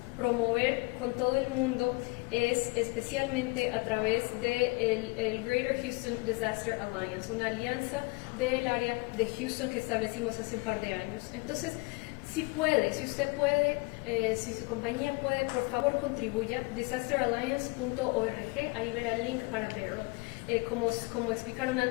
promover con todo el mundo es especialmente a través de el Greater Houston Disaster Alliance, una alianza del área de Houston que establecimos hace un par de años. Entonces, si usted puede, si su compañía puede, por favor contribuya, disasteralliance.org, ahí verá el link para Beryl. Como explicaron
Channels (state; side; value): quieter; right; 27.2 dB